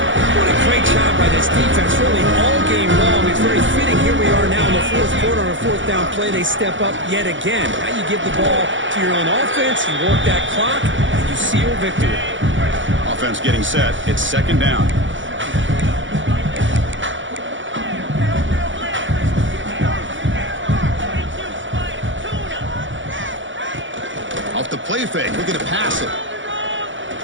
What a great job by this defense, really all game long. It's very fitting. Here we are now in the 4th quarter on a 4th down play. They step up yet again. Now you give the ball to your own offense, you work that clock, and you seal victory. Offense getting set. It's 2nd down. Off the play fake, looking to pass it.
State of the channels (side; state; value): left; late; 0.56 ms